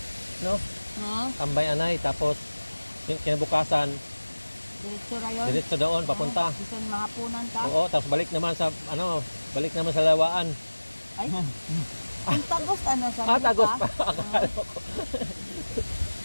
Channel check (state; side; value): inverted; both; correlation -1.00